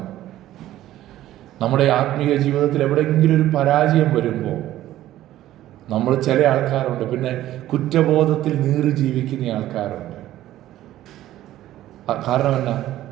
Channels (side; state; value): left; quieter; 13.9 dB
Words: നമ്മുടെ ആത്മീയ ജീവിതത്തിൽ എവിടെയെങ്കിലും ഒരു പരാജയം വരുമ്പോൾ നമ്മൾ ചില ആൾക്കാരുണ്ട്, പിന്നെ കുറ്റബോധത്തിൽ നീറി ജീവിക്കുന്ന ആൾക്കാരുണ്ട്. കാരണം എന്നാ?